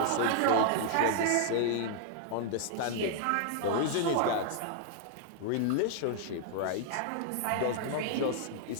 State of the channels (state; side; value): different; both; correlation 0.00